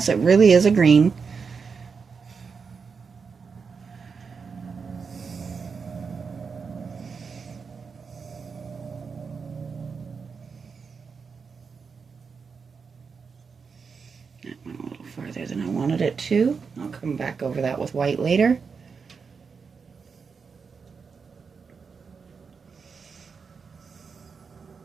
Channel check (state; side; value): quieter; left; 5.5 dB